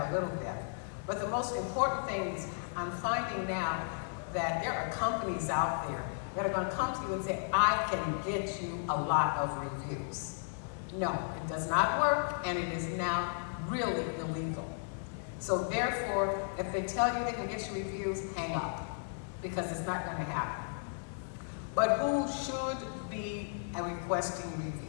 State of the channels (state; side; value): silent; right; 55 dB below the other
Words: a little bit. But the most important thing is I'm finding now that there are companies out there that are going to come to you and say, I can get you a lot of reviews. No, it does not work, and it is now really illegal. So therefore, if they tell you they can get you reviews, hang up, because it's not going to happen. But who should be requesting